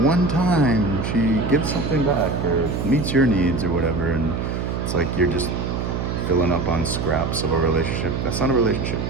one time she gives something back or meets your needs or whatever, and it's like you're just filling up on scraps of a relationship. That's not a relationship.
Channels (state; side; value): noise; right; hum, 2 dB below the sound